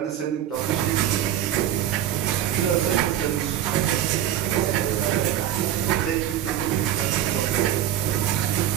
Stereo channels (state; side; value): quieter; left; 11.2 dB